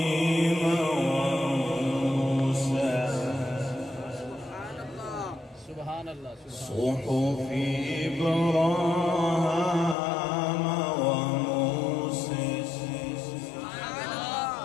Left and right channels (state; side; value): drops out; right; at 10.0 s